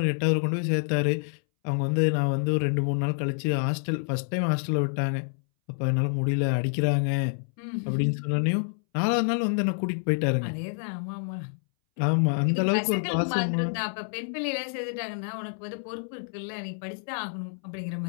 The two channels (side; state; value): right; silent; 60 dB below the other